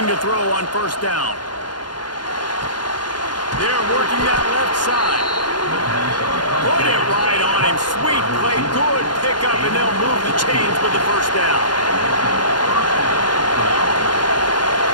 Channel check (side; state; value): right; late; 0.70 ms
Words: to throw on first down. They're working that left side. Put it right on him. Sweet play. Good pickup, and they'll move the chains with the first down.